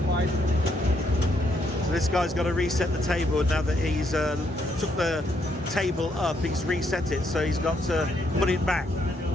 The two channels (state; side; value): normal; both; correlation 0.74